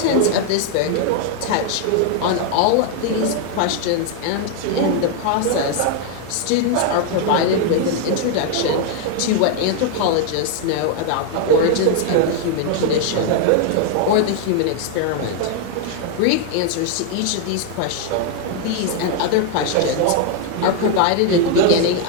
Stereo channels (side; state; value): both; different; correlation 0.00